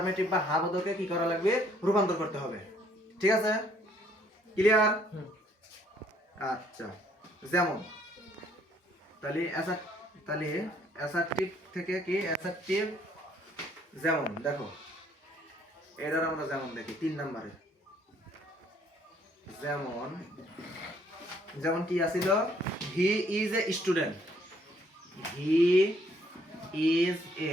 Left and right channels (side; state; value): both; normal; correlation 0.64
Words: বা হাবোধকে কি করা লাগবে, রূপান্তর করতে হবে। ঠিক আছে? ক্লিয়ার? আচ্ছা, যেমন তাহলে অ্যাসার্টিভ থেকে কি অ্যাসার্টিভ, যেমন দেখো এটার আমরা যেমন দেখি 3 নম্বরে, যেমন কি আছিল, he is a student, he is